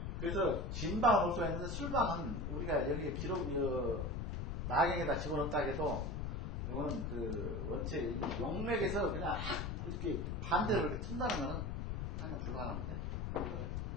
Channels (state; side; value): noise; left; rumble, 3 dB below the sound